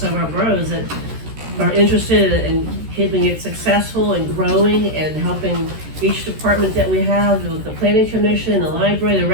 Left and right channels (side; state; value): left; late; 13 ms